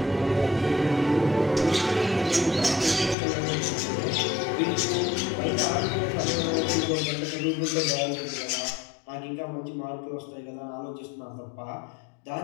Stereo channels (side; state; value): right; drops out; at 3.2 s